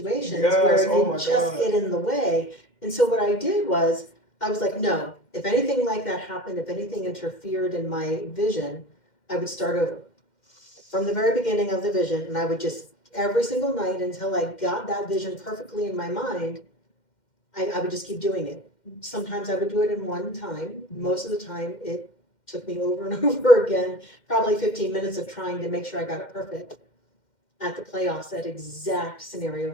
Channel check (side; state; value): right; late; 2.1 ms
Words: where you just get in the way. And so what I did was, I was like, no, if anything like that happened, if anything interfered in my vision, I would start over from the very beginning of the vision. And I would just, every single night until I got that vision perfectly in my mind, I would just keep doing it. Sometimes I would do it in one time. Most of the time it took me over and over again, probably 15 minutes of trying to make sure I got it perfect. At the playoffs, that exact scenario